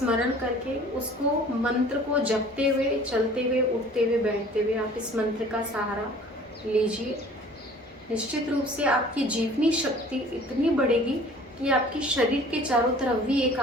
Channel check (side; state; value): both; normal; correlation 0.49